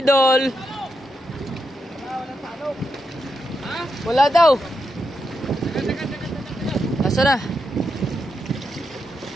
Wala daw. Nasaan na?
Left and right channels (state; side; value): normal; both; correlation 0.84